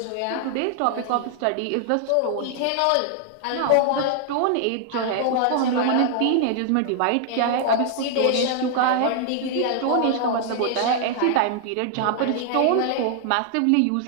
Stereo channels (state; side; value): different; both; correlation 0.00